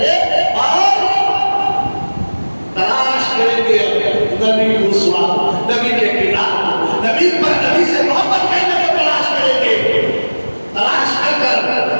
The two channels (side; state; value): both; inverted; correlation -1.00